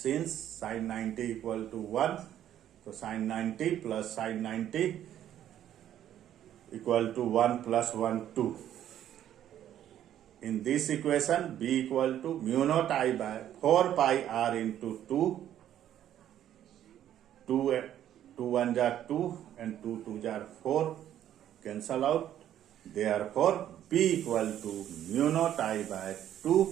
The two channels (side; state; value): left; quieter; 11.2 dB